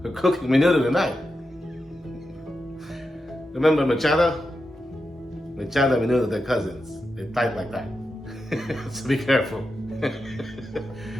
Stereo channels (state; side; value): normal; both; correlation 0.89